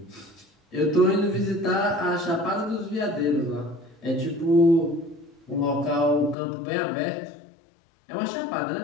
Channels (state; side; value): drops out; right; at 6.4 s